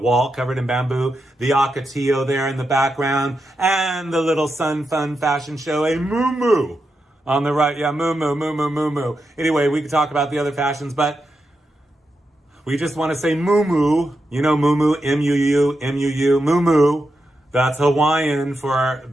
covered in bamboo, the Acatio there in the background, and the little Sun Fun fashion show, a moo on the right. Yeah, moo. Anyway, we could talk about the other fashions, but we just want to say moo. You know moo, M-U-U, moo. That's Hawaiian for,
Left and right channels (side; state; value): both; normal; correlation 0.87